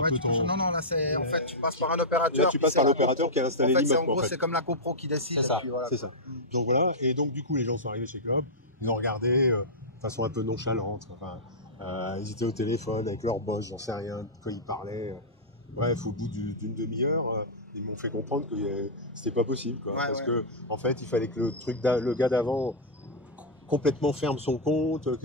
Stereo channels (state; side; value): normal; both; correlation -0.09